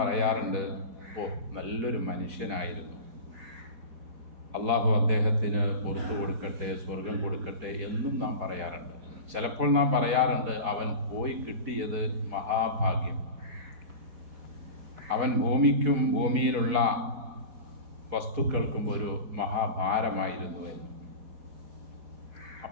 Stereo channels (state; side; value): late; left; 4.1 ms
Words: ഓ നല്ലൊരു മനുഷ്യനായിരുന്നു, അള്ളാഹു അദ്ദേഹത്തിന് പുറത്തു കൊടുക്കട്ടെ, സ്വർഗം കൊടുക്കട്ടെ എന്നും നാം പറയാറുണ്ട്. ചിലപ്പോൾ നാം പറയാറുണ്ട്, അവൻ പോയി കിട്ടിയത് മഹാഭാഗ്യം, അവൻ ഭൂമിക്കും ഭൂമിയിലുള്ള വസ്തുക്കൾക്കും ഒരു മഹാഭാരമായിരുന്നു എന്ന്.